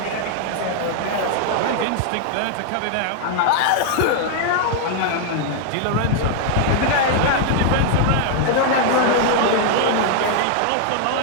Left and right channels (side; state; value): both; different; correlation 0.00